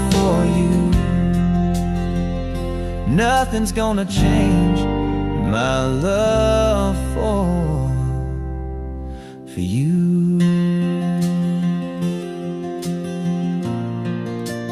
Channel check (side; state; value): both; identical; correlation 1.00